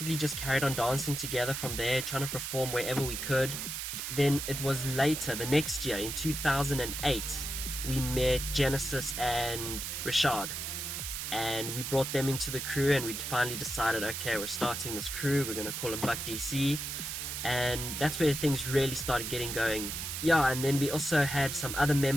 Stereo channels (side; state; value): right; noise; hiss, 4 dB below the sound